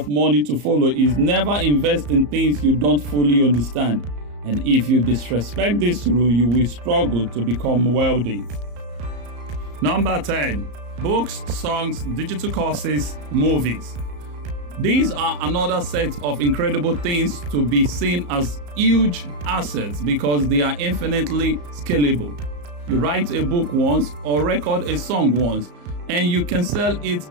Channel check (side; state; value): left; late; 34 ms